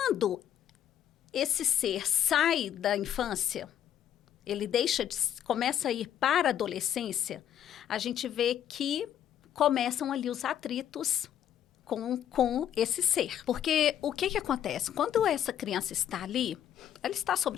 esse ser sai da infância, ele começa a ir para a adolescência, a gente vê que começam ali os atritos com esse ser. Porque o que acontece? Quando essa criança está ali, ela está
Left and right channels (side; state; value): right; quieter; 10.1 dB